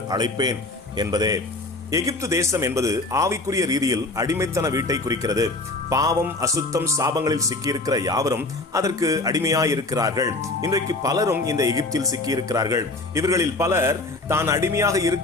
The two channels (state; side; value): quieter; right; 3.0 dB